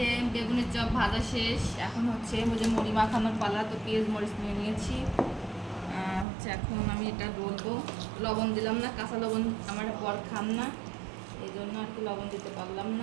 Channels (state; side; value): drops out; left; at 6.2 s